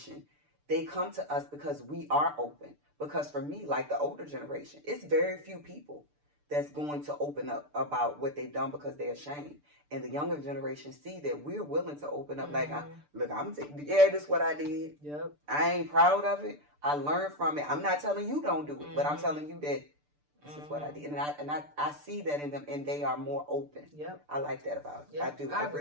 they come to us because we are open. Because for me, like the older generation, it's very few people that's going to open up about what they've done because they're ashamed. And the younger generation see that we're willing to open up. Like, this is what I did. Yep. I ain't proud of it. I learned from it. I'm not telling you don't do it, but I'm telling you that This is what I did. And I see that in them, and they are more open. Yep. I like that about it. Yep. I do. I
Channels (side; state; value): left; late; 6.8 ms